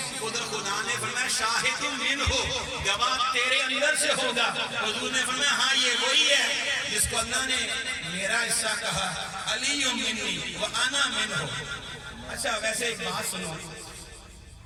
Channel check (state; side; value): identical; both; correlation 1.00